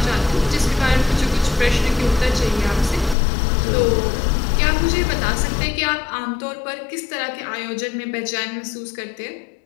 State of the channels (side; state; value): right; drops out; at 3.2 s